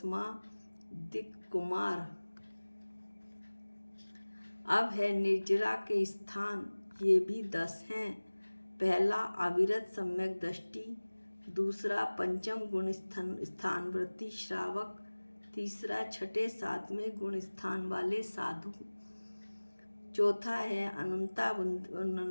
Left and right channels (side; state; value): both; inverted; correlation -1.00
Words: दिक् कुमार। अब है निर्जरा के स्थान। ये भी 10 हैं। पहला अविरत सम्यक दृष्टि, दूसरा पंचम गुण स्थान वृत्ति श्रावक, तीसरा 6ठे 7वें गुण स्थान वाले साधु, चौथा है